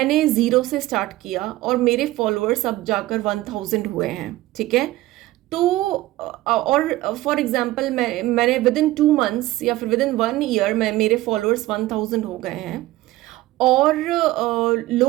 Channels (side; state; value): left; quieter; 17.4 dB